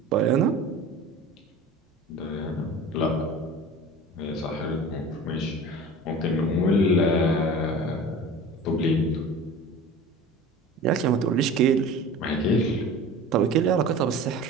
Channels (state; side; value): normal; both; correlation 0.38